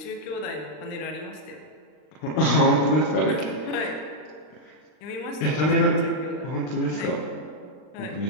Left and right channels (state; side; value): late; right; 39 ms